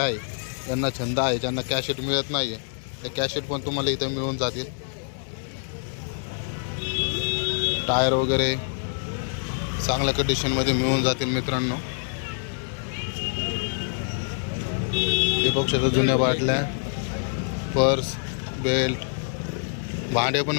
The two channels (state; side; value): silent; right; digital silence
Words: ज्यांना छंद आहे, ज्यांना कॅशेट मिळत नाही आहे, त्या कॅशेट पण तुम्हाला इथं मिळून जातील. टायर वगैरे चांगल्या कंडिशनमध्ये मिळून जातील मित्रांनो. हे बघू शकता जुन्या बाटल्या, पर्स, बेल्ट, भांडे पण